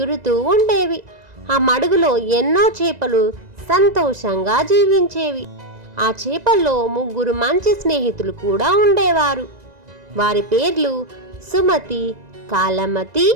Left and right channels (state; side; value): late; left; 2.0 ms